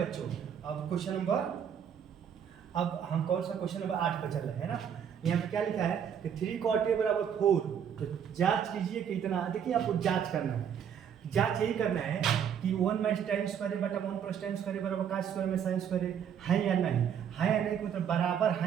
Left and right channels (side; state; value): left; quieter; 8.3 dB